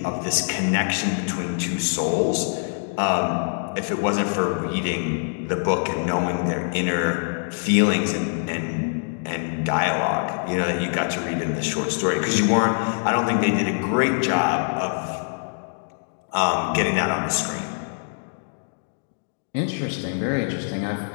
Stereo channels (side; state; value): right; silent; 61 dB below the other